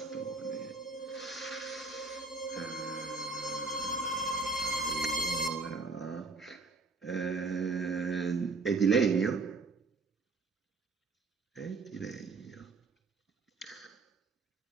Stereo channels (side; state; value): left; quieter; 4.0 dB